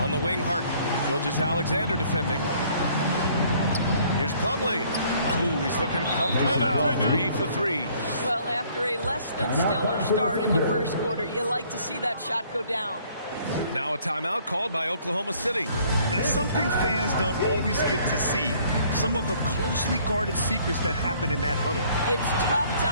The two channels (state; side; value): inverted; both; correlation -0.60